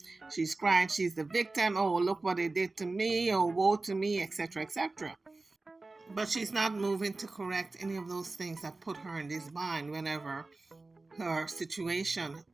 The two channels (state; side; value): quieter; left; 3.4 dB